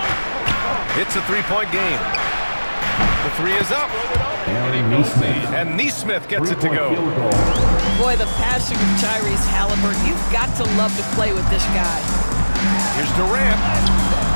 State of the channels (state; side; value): inverted; both; correlation -1.00